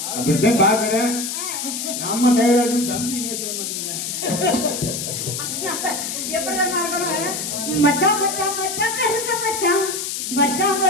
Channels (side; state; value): left; noise; hiss, 4 dB below the sound